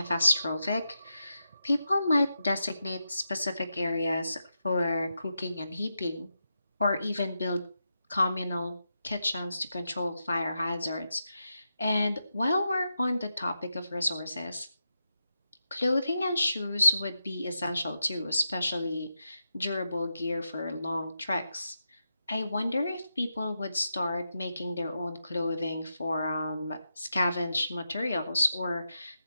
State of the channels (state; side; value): inverted; both; correlation -0.87